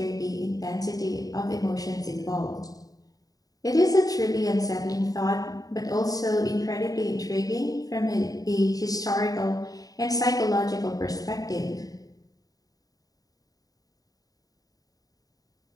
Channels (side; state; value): right; late; 0.18 ms